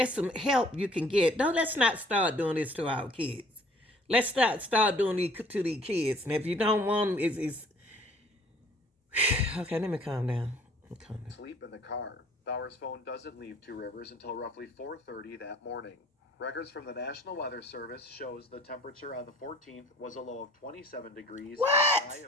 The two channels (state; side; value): normal; both; correlation 0.54